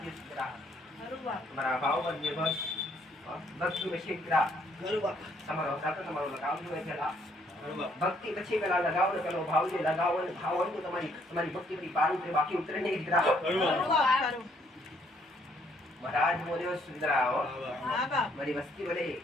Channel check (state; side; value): normal; both; correlation 0.68